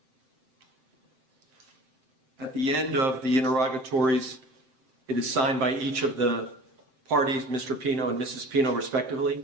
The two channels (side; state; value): left; late; 7.6 ms